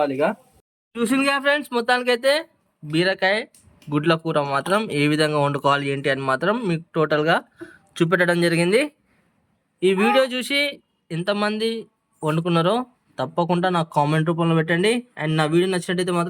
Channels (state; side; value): identical; both; correlation 1.00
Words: ఇక చూసింది కదా ఫ్రెండ్స్, మొత్తానికైతే బీరకాయ గుడ్ల కూర మాత్రం ఏ విధంగా వండుకోవాలి ఏంటి అని మాత్రం మీకు టోటల్గా చూపెట్టడం జరిగింది. ఈ వీడియో చూసి ఎంతమంది వండుకున్నారో తప్పకుండా నాకు కామెంట్ రూపంలో పెట్టండి. అండ్ నా వీడియో నచ్చినట్టయితే